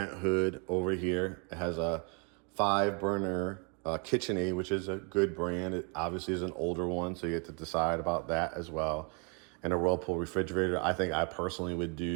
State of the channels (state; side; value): quieter; left; 35.8 dB